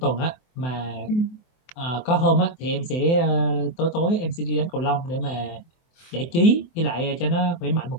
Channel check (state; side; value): late; right; 24 ms